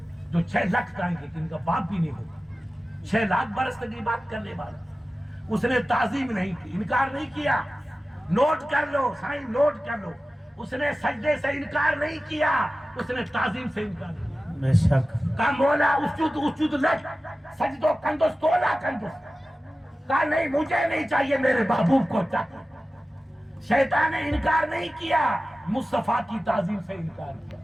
جو 6 لاکھ آئیں گے کہ ان کا باپ بھی نہیں ہوگا. 6 لاکھ برس تک یہ بات کرنے والا. اس نے تعظیم نہیں کی، انکار نہیں کیا. نوٹ کر لو سائیں، نوٹ کر لو. اس نے سجدے سے انکار نہیں کیا، اس نے تعظیم سے انکار کیا. بے شک. کہا مولا اسجد لک سجدو کندس تولا کندس. کہا نہیں مجھے نہیں چاہیے، میرے محبوب کو چاہیے. شیطان نے انکار نہیں کیا، مصطفیٰ کی تعظیم سے انکار کیا،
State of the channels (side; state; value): both; normal; correlation 0.95